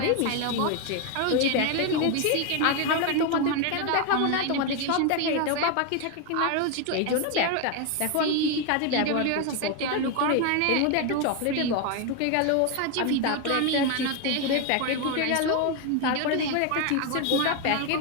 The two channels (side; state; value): both; different; correlation 0.01